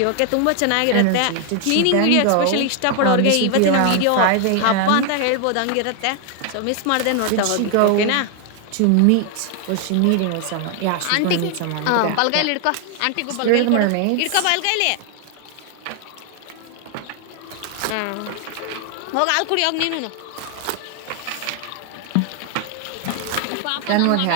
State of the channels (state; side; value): different; both; correlation 0.00